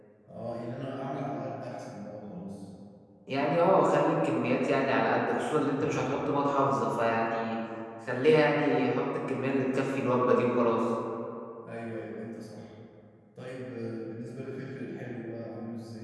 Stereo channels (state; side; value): identical; both; correlation 1.00